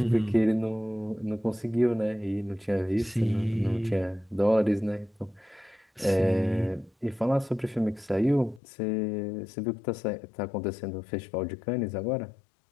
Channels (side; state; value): right; drops out; at 8.6 s